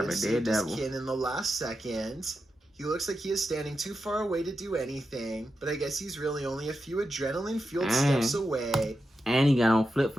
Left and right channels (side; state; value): both; normal; correlation 0.88